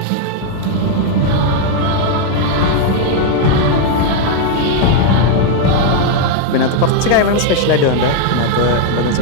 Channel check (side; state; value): both; different; correlation 0.00